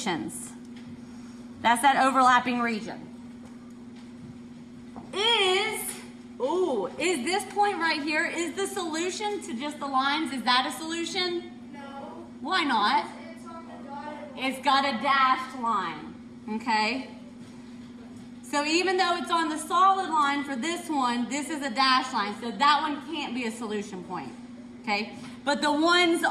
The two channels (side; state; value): both; identical; correlation 1.00